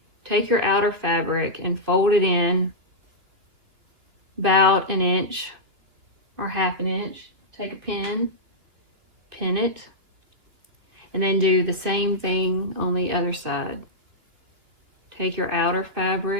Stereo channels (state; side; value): late; left; 3.0 ms